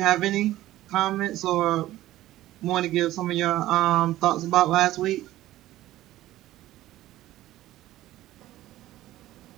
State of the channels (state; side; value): quieter; left; 15.1 dB